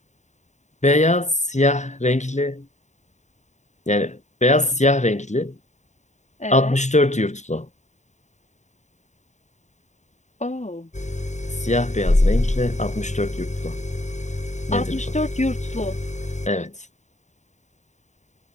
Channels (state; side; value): late; right; 0.34 ms